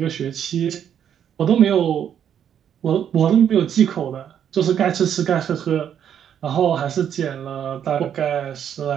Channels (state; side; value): quieter; left; 9.1 dB